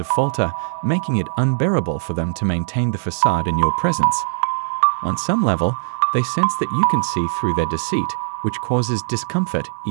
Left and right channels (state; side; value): silent; left; 55 dB below the other